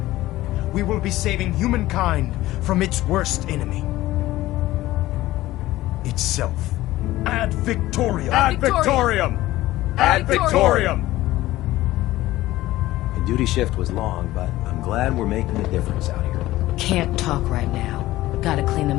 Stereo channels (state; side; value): quieter; right; 16.5 dB